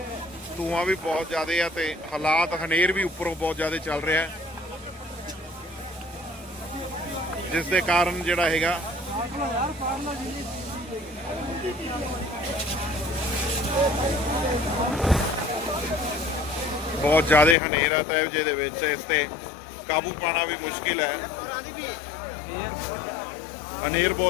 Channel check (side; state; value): right; drops out; at 17.6 s